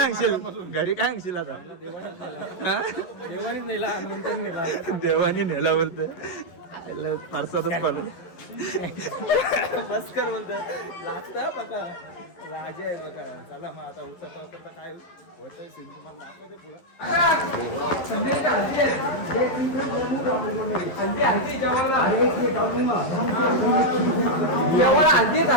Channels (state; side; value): late; right; 11 ms